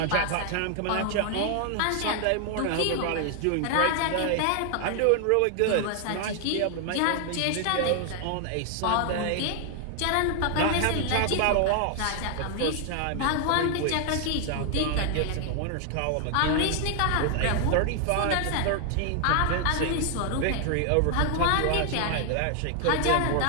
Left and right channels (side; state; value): both; different; correlation 0.00